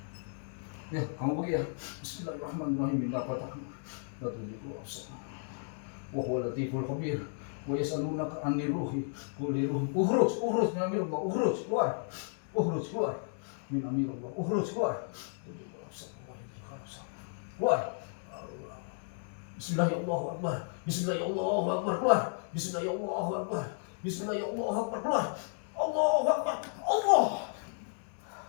Ya, kamu pergi ya. Bismillahirrahmanirrahim. Minta patah. La tujibu absar. Wa huwa latiful khabir. Wa yas'alunaka 'anir ruhi. Qul ruh. Ukhruj min amirullah. Ukhruj keluar. Ukhruj keluar. Min amirullah. Ukhruj keluar. Keluar. Bismillahirrahmanirrahim. Bismillahirrahmanirrahim. Keluar. Bismillahirrahmanirrahim. Bismillahirrahmanirrahim. Keluar. Allahu Akbar. Allah.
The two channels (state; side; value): silent; right; digital silence